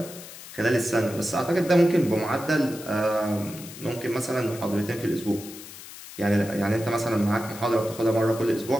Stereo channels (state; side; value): noise; left; hiss, 15 dB below the sound